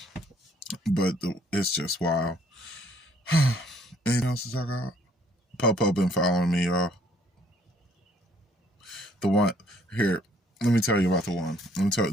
But it's just wild. Anything else to talk about? Popo been following me, y'all. The one here, let me tell you about the one. Let me tell you,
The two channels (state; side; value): normal; both; correlation 0.63